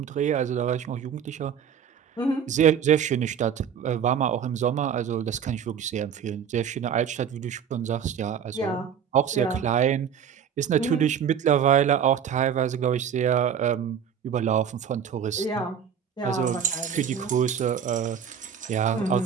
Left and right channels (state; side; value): quieter; left; 7.9 dB